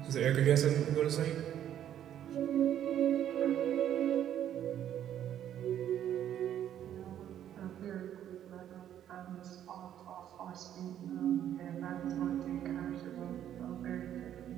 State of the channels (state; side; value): quieter; left; 10.6 dB